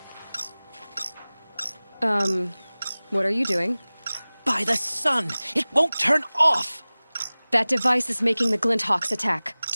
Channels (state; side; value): inverted; both; correlation -0.99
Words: What are you doing? By the sun, it won't turn off! That device is making the Glinthawks attack.